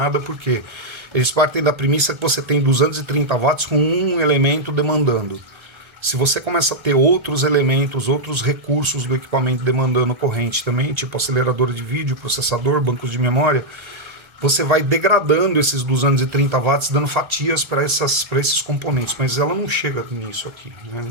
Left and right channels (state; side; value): late; left; 1.3 ms